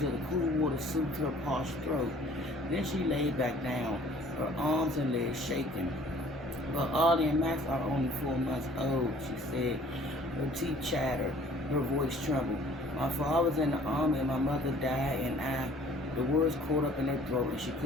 the cool water soothed her parched throat. Then she lay back down, her arms and legs shaking. But Ollie and Max are only 4 months old, she said. Her teeth chattered, her voice trembled. My father was in the army and my mother died the words caught up in her throat and she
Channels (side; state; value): both; normal; correlation 0.54